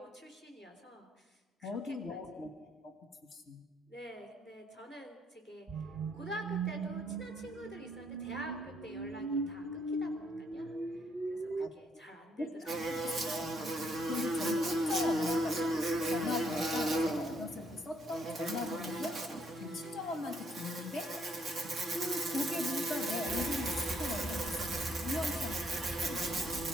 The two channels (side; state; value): both; normal; correlation 0.69